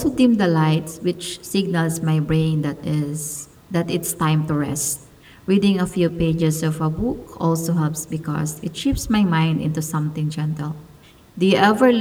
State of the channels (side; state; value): both; identical; correlation 1.00